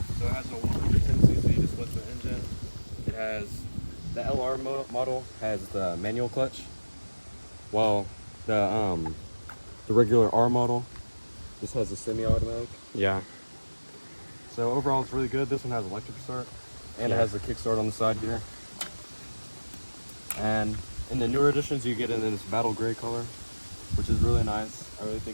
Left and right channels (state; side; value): inverted; both; correlation -1.00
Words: So it has a 110cc displacement engine. It has the LR model has the manual clutch, while the regular R model just has a semi-automatic. Yeah. So overall, it's really good. This one has electric start, and it has the kickstart on the side here. And in the newer editions, you get it in this battle gray color, which is really nice. I really